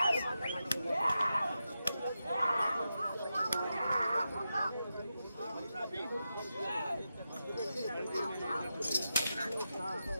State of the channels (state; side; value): inverted; both; correlation -0.88